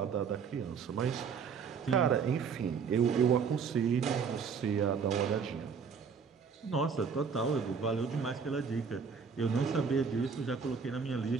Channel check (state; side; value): quieter; left; 6.0 dB